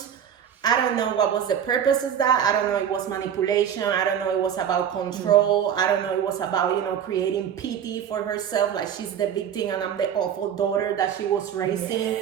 I don't know what was the purpose of that. I don't know it was manipulation. I don't know it was about control. I don't know it was about, creating pity for herself. Like she's the victim and I'm the awful daughter that she was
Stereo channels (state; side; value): quieter; left; 8.8 dB